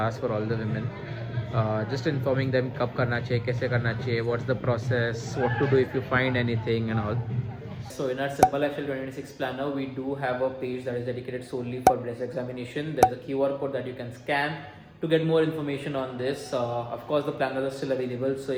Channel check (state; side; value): identical; both; correlation 1.00